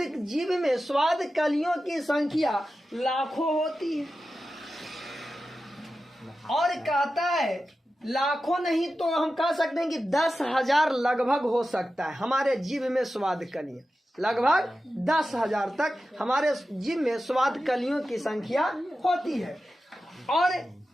जीभ में स्वाद कलियों की संख्या लाखों होती है। और कहता है लाखों नहीं तो हम कह सकते हैं कि 10,000 लगभग हो सकता है हमारे जीभ में स्वाद कलियां। लगभग 10,000 तक हमारे जीभ में स्वाद कलियों की संख्या होती है। और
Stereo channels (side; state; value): both; normal; correlation 0.92